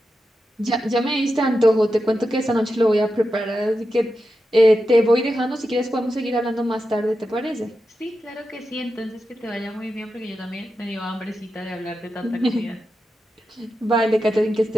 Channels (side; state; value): both; normal; correlation 0.89